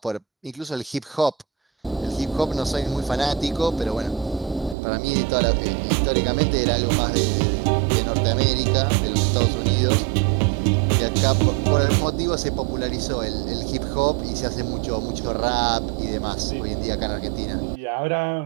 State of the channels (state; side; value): drops out; left; at 4.8 s